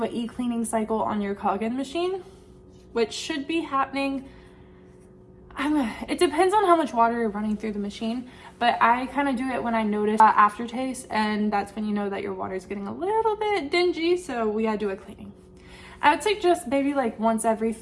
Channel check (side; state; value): both; identical; correlation 1.00